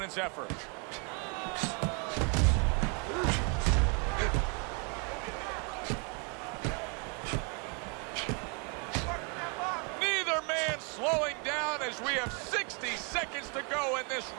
effort. Neither man slowing down as we have 60 seconds to go in this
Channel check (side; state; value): left; quieter; 35.9 dB